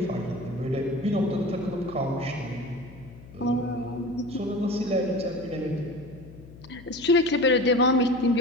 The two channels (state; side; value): noise; left; hum, 19 dB below the sound